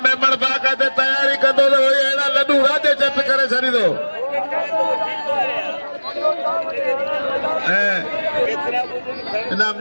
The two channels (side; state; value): both; inverted; correlation -1.00